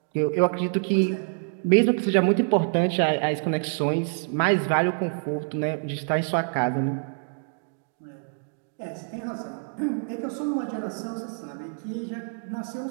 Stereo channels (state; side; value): silent; left; 61 dB below the other